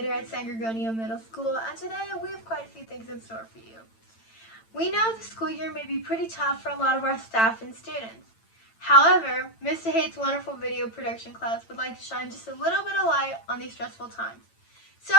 at San Gregorio Middle School, and today we have quite a few things in store for you. We know the school year may be pretty tough for a lot of our staff and students. However, Mr. Hate's wonderful video production class would like to shine just a little bit of light on these stressful times. So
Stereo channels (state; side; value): late; right; 8.9 ms